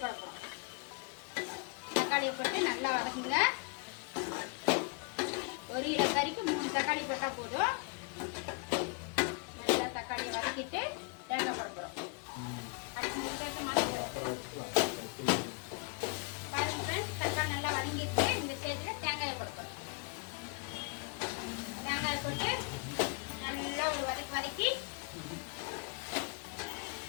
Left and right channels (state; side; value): quieter; right; 33.3 dB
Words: போட போகிறோம். தக்காளியை போட்டு நல்லா வதக்குங்க. 1 கிலோ கறிக்கு 3 தக்காளி போட்டால் போதும். நல்லா தக்காளியை வதக்கிட்டு தேங்காய் போட போகிறோம். பாருங்க ஃப்ரெண்ட்ஸ், தக்காளி நல்லா வதங்கிட்டு இந்த ஸ்டேஜில் தேங்காயை போட போகிறோம். தேங்காயை போட்டு நல்லா ஒரு வதக்கி